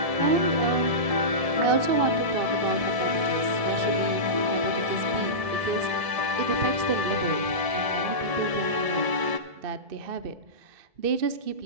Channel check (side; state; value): left; late; 1.7 ms